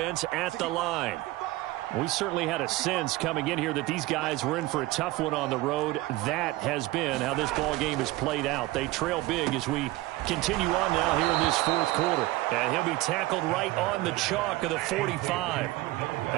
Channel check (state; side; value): quieter; left; 18.4 dB